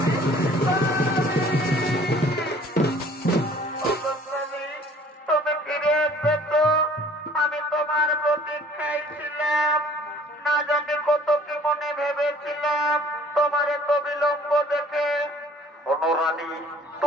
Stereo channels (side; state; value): both; normal; correlation 0.54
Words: তুমি ফিরে এসবে তো? আমি তোমার প্রতীক্ষায় ছিলাম। না জানি কত কি মনে ভেবেছিলাম তোমার এত বিলম্ব দেখে। অনুরানী,